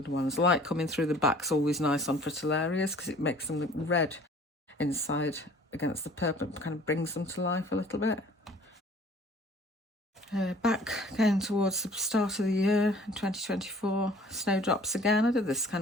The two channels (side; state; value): both; normal; correlation 0.51